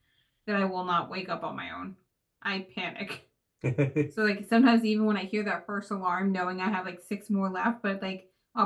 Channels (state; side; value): identical; both; correlation 1.00